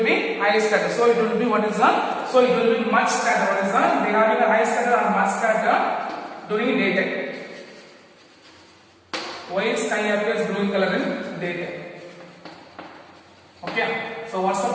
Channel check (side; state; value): both; identical; correlation 1.00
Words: be high scatter. So it will be what is that? So it will be much scatter. What is that? They having a high scatter or much scatter during daytime. White sky appears blue in color in daytime. Okay. So what's the